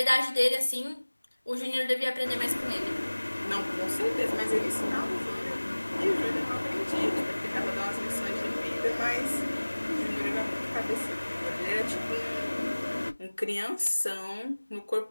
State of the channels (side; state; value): both; inverted; correlation -1.00